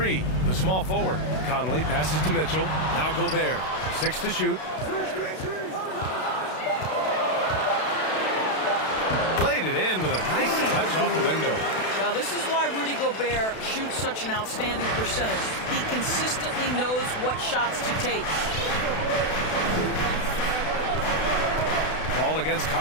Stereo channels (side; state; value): right; late; 32 ms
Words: the small forward. Conley passes to Mitchell. Now Gobert. 6 to shoot. Played it in with a nice touch off the window. Well, this is why Rudy Gobert shoots such an outstanding percentage. He consistently knows what shots to take. Paul against